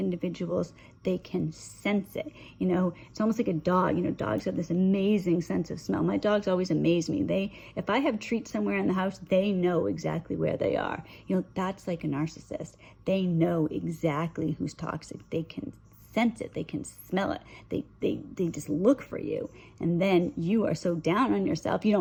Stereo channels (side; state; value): both; identical; correlation 1.00